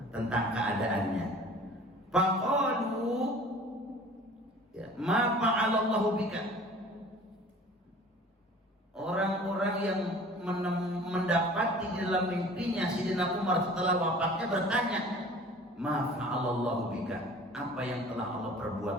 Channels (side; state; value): both; normal; correlation 0.46